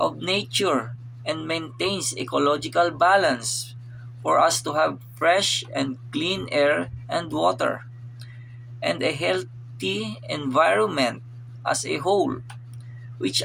nature and maintains ecological balance for us to have fresh and clean air and water, and a healthy environment as a whole, which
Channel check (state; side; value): identical; both; correlation 1.00